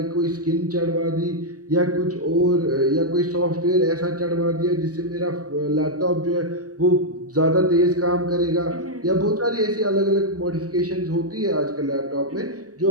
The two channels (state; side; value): late; left; 0.67 ms